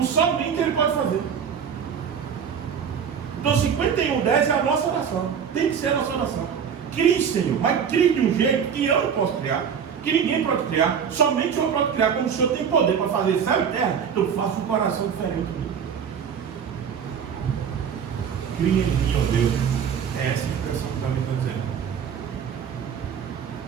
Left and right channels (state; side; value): quieter; left; 7.4 dB